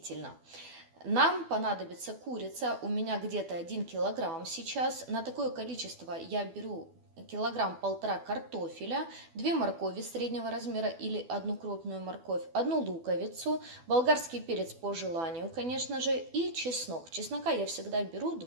Нам понадобится курица, у меня где-то 1 килограмм сейчас. На такое количество я беру 1,5 килограмма картофеля, 2 моркови среднего размера или 1 крупную морковь, 1 луковицу, болгарский перец по желанию, конечно же, и чеснок. Чеснока я всегда беру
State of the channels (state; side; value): late; left; 12 ms